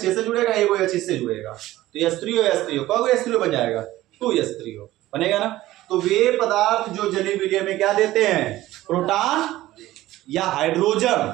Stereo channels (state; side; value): quieter; left; 15.9 dB